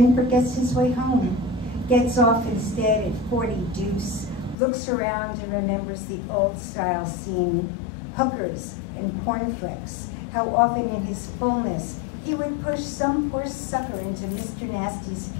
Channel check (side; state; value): right; drops out; at 4.5 s